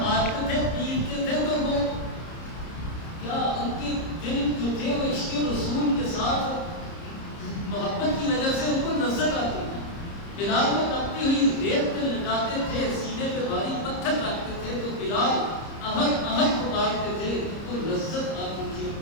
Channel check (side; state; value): right; late; 30 ms